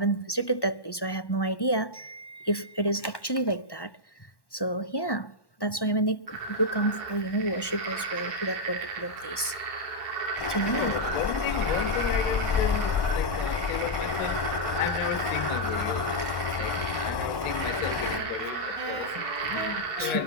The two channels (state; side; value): late; right; 1.1 ms